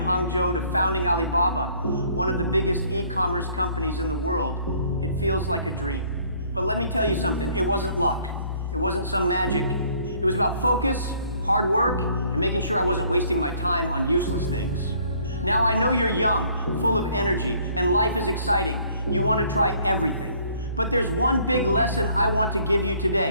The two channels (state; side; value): inverted; both; correlation -0.60